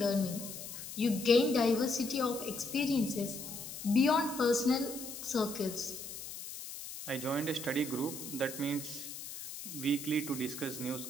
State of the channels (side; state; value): left; noise; hiss, 10 dB below the sound